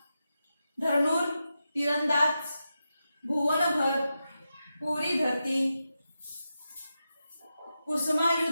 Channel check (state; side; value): inverted; both; correlation -0.89